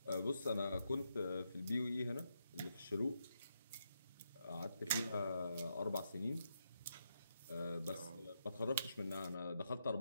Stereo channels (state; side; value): inverted; both; correlation -0.81